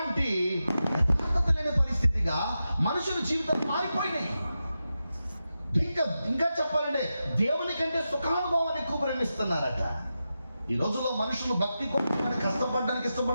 యథార్థత లేని పరిస్థితిగా మనుషుల జీవితం మారిపోయినాయి. ఇంకా చెప్పాలంటే దేవుని కంటే సుఖానుభవాన్ని ఎక్కువ ప్రేమిస్తున్నారట. ఈ రోజుల్లో మనుషులు భక్తి కోసం కష్టపడడానికి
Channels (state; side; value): inverted; both; correlation -0.90